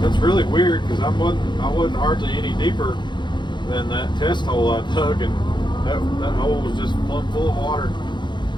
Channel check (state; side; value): late; right; 0.22 ms